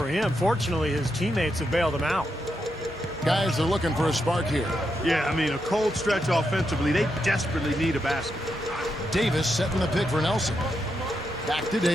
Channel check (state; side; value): normal; both; correlation 0.83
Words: him. Fortunately, his teammates have bailed him out. Guys are looking for a spark here. Yeah, I mean, a cold stretch offensively. They desperately need a basket. Davis setting the pick for Nelson. Back to